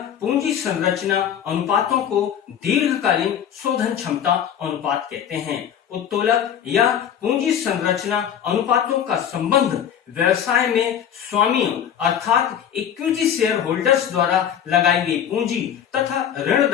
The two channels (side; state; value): right; quieter; 9.1 dB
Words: पूंजी संरचना अनुपातों को दीर्घकालीन शोधन क्षमता अनुपात कहते हैं। उत्तोलक या पूंजी संरचना अनुपातों का संबंध व्यवसाय में स्वामियों अर्थात इक्विटी शेयर होल्डर्स द्वारा लगाई गई पूंजी तथा